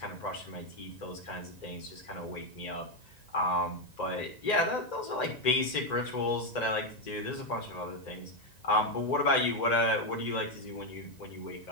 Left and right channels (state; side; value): late; right; 1.9 ms